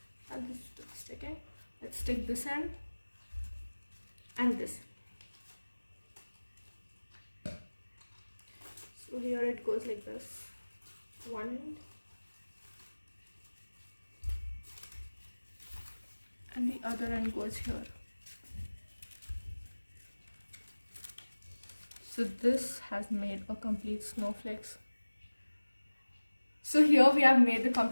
And this is sticking. Let's stick this end and this. So here it goes like this. One end and the other end goes here. So this has made a complete snowflakes. So here we have made the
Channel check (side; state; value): both; inverted; correlation -1.00